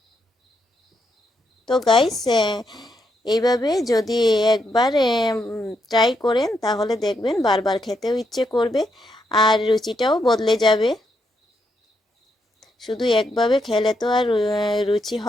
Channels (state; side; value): normal; both; correlation 0.79